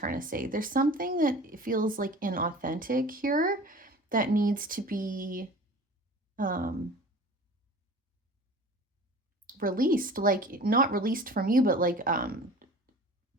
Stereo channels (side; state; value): both; normal; correlation 0.41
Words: to say. There's something that feels like inauthentic here that needs to be released, like not released from you, but like